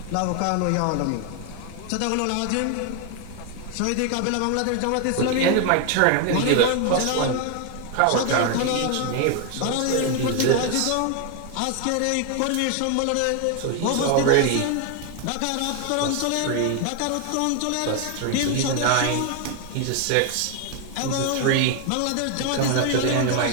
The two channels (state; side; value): different; both; correlation 0.01